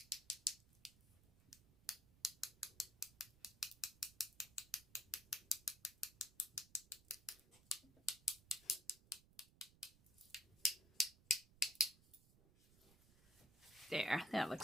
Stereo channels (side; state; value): right; noise; rumble, 26 dB below the sound